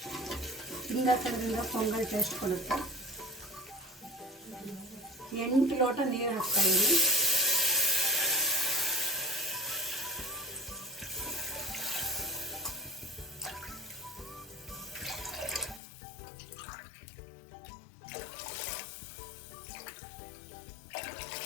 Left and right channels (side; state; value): right; drops out; at 15.8 s